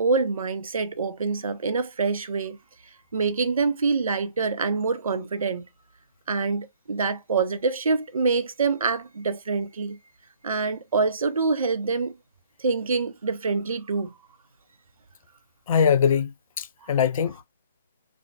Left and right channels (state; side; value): inverted; both; correlation -0.59